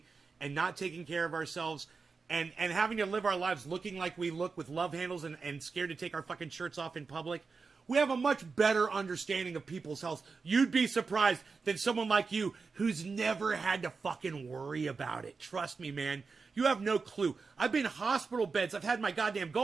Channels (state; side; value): quieter; left; 4.7 dB